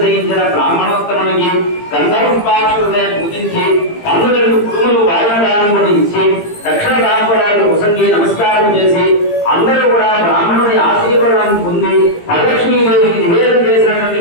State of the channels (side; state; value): right; late; 18 ms